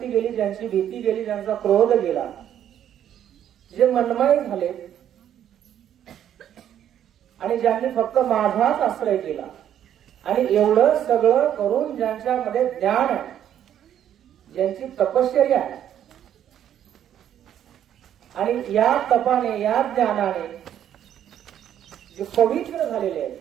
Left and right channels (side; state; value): left; quieter; 10.3 dB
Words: गेली, ज्यांची भीती गेली, ज्यांचा क्रोध गेला, जे मनमय झाले आणि ज्यांनी फक्त माझाच आश्रय केला, आणि एवढं सगळं करून ज्यांच्यामध्ये ज्ञान आहे, ज्यांची तपश्चर्या आहे, आणि या तपाने, या ज्ञानाने जे पवित्र झालेले आहेत,